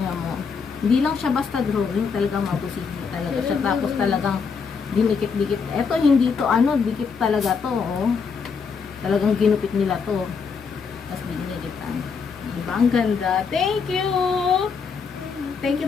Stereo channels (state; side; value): quieter; right; 5.6 dB